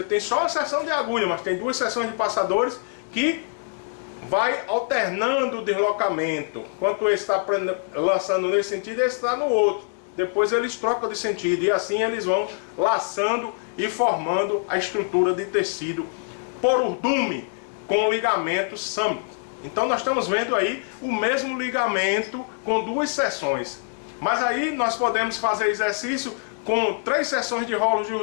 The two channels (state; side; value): silent; right; 56 dB below the other